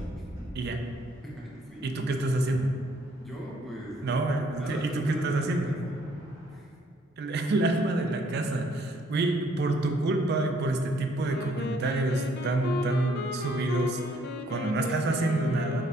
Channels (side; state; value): both; normal; correlation 0.65